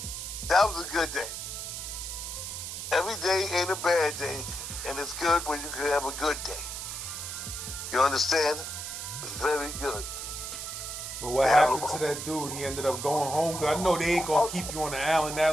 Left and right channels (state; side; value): noise; right; hiss, 6 dB below the sound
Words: Every day ain't a bad day, and it's good when you can have a good day. You understand? It's very good. But what happened to that dude? He ended up going home. Cause I know they ain't gonna keep you on the island